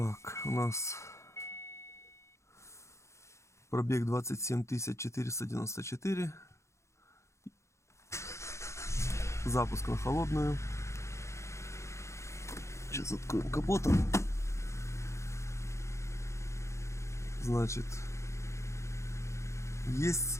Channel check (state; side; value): late; right; 0.14 ms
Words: у нас пробег 27 494. Запуск на холодную. Сейчас откроем капот. Значит, есть